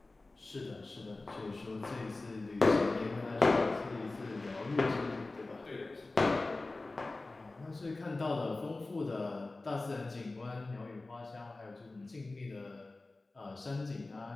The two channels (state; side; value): quieter; right; 3.2 dB